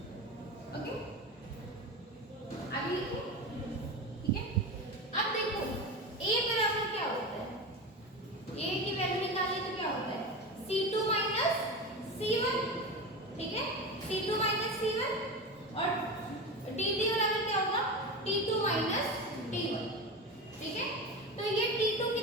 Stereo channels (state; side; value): normal; both; correlation 0.24